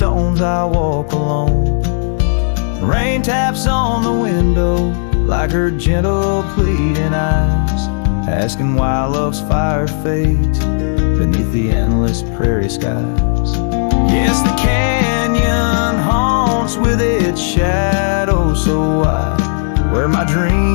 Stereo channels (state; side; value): silent; right; digital silence